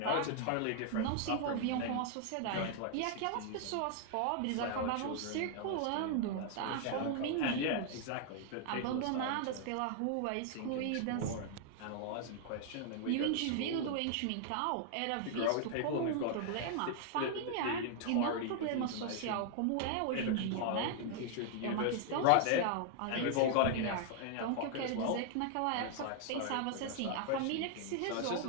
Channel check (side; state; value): both; different; correlation 0.00